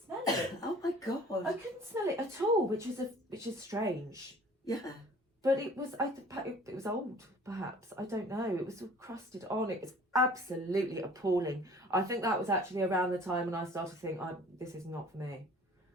it. Oh my God. I couldn't smell it at all, which is strange. Yeah. But it was it was old, perhaps. I don't know. It was all crusted on. It was absolutely appalling. I think that was actually around the time when I started to think, this is not for me.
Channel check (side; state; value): both; normal; correlation 0.49